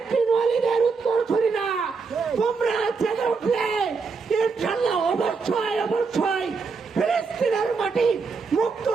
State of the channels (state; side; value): quieter; left; 4.8 dB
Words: বিন ওয়ালিদের উত্তর ছড়িনা। তোমরা জেগে উঠলে ইনশাআল্লাহ অবশ্যই অবশ্যই ফিলিস্তিনের মাটি মুক্ত